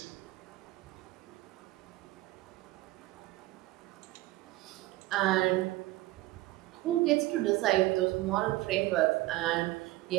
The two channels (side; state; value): left; quieter; 17.8 dB